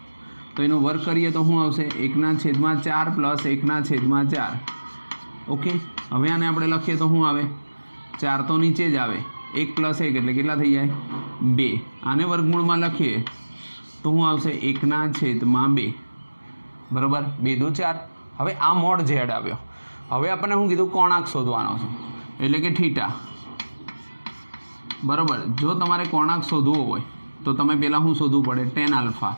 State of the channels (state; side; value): inverted; both; correlation -1.00